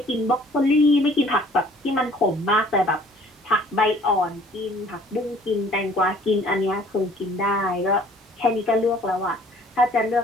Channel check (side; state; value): both; normal; correlation 0.55